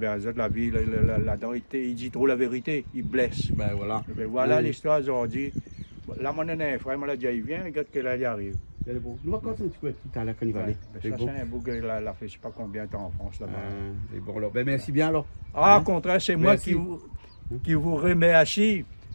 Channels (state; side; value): inverted; both; correlation -1.00